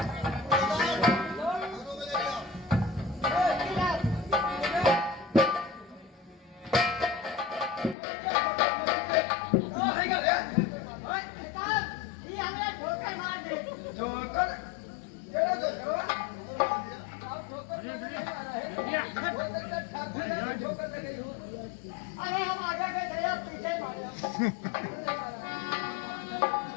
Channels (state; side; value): drops out; right; at 8.0 s